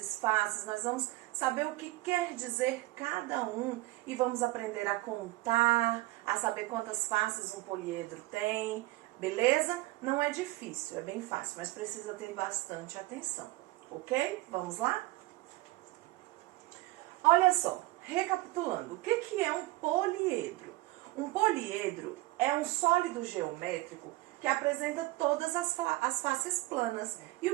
faces, nós vamos saber o que quer dizer cada um e vamos aprender a contar, a saber quantas faces um poliedro tem, beleza? Não é difícil, é bem fácil, mas precisa ter bastante atenção, ok? Vamos lá? Olha só, recapitulando, o que é um poliedro? Um poliedro é um sólido geométrico que apresenta todas as faces planas. E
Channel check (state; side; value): quieter; left; 19.3 dB